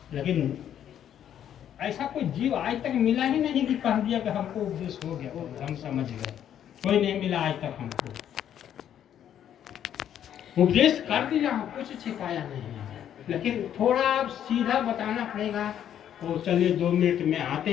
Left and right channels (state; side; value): quieter; right; 10.0 dB